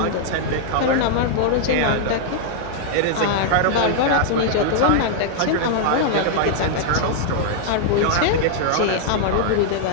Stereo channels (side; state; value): both; different; correlation -0.01